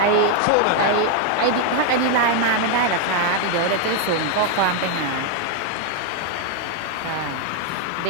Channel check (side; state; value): both; different; correlation 0.00